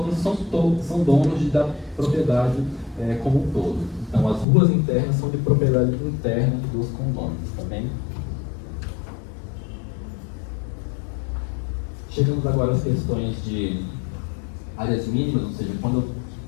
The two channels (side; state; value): right; drops out; at 4.5 s